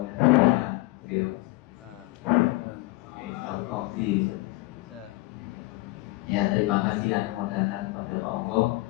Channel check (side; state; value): right; quieter; 21.8 dB